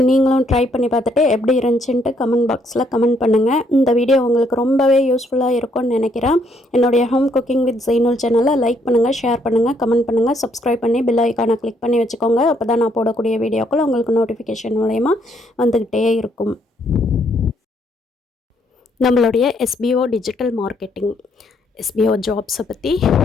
ட்ரை பண்ணி பார்த்துட்டு எப்படி இருந்துச்சுன்ட்டு கமெண்ட் பாக்ஸில் கமெண்ட் பண்ணுங்கள். இந்த வீடியோ உங்களுக்கு ரொம்பவே யூஸ்ஃபுல்லாக இருக்கும்னு நினைக்கிறேன். என்னுடைய ஹோம் குக்கிங் வித் ஜெய்னுல் சேனலை லைக் பண்ணுங்கள், ஷேர் பண்ணுங்கள், கமெண்ட் பண்ணுங்கள், சப்ஸ்கிரைப் பண்ணி பெல் ஐக்கானை கிளிக் பண்ணி வச்சுக்கோங்க. அப்போ தான் நான் போடக்கூடிய வீடியோக்கள் உங்களுக்கு நோட்டிஃபிகேஷன் மூலயமா வந்துக்கிட்டே இருக்கும். நம்மளுடைய SBO டிஜிட்டல் மார்க்கெட்டிங், SBO ஜாப்ஸை பற்றி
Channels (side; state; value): both; normal; correlation 0.70